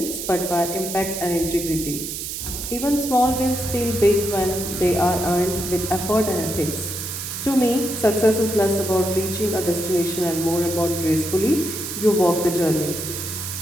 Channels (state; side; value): noise; right; hiss, 6 dB below the sound